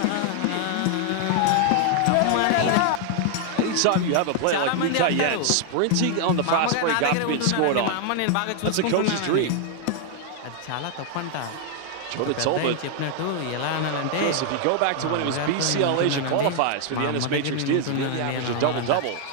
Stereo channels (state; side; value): different; both; correlation 0.00